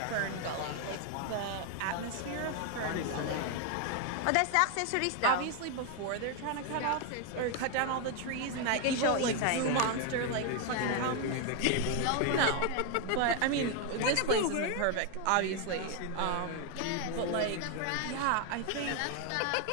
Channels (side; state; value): both; different; correlation 0.01